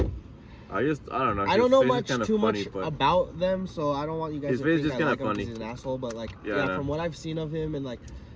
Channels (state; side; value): identical; both; correlation 1.00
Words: I don't know. I don't know much about them, so I don't want you guys to think I like him because he's an asshole. But like, from what I've seen of him, and like,